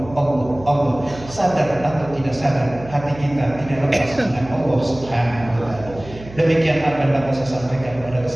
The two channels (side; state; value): right; noise; hum, 17 dB below the sound